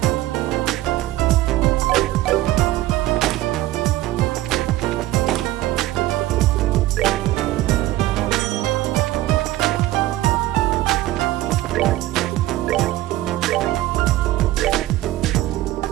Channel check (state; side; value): quieter; left; 15.8 dB